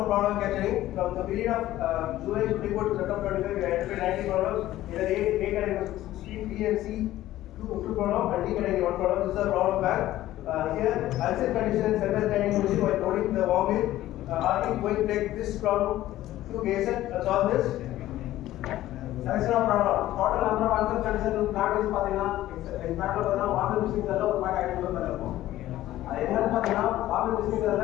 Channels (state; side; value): quieter; right; 14.7 dB